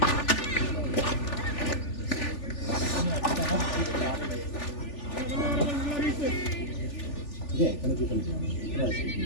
ஏன் கணக்கு பண்ணிக்கலாம்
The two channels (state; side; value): late; right; 3.4 ms